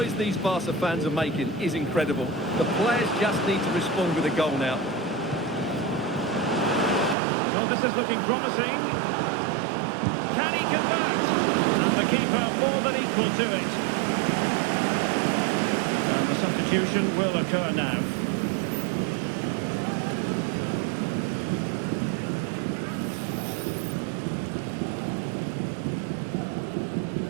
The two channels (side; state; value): left; drops out; at 7.2 s